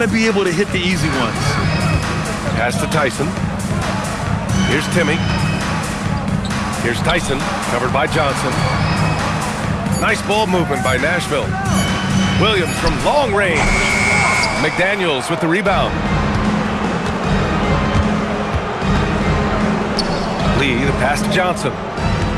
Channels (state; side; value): identical; both; correlation 1.00